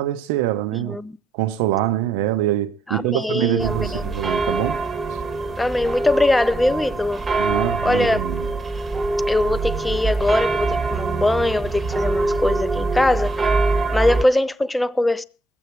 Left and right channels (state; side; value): normal; both; correlation 0.77